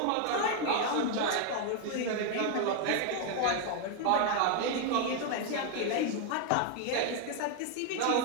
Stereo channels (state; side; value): different; both; correlation 0.00